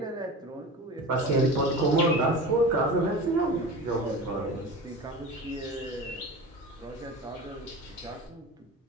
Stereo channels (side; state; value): both; normal; correlation 0.32